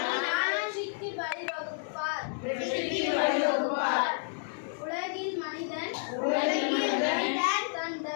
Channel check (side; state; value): right; silent; digital silence